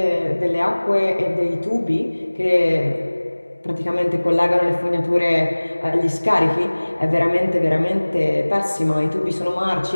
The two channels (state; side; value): inverted; both; correlation -1.00